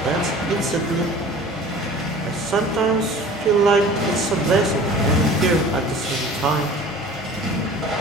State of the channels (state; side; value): normal; both; correlation 0.43